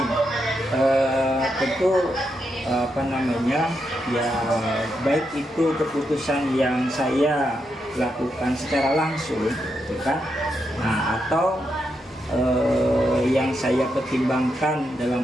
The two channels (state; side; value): normal; both; correlation 0.83